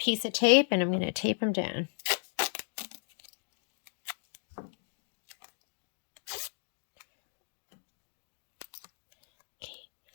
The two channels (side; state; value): right; silent; 55 dB below the other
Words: of tape and I'm gonna tape them down. Okay,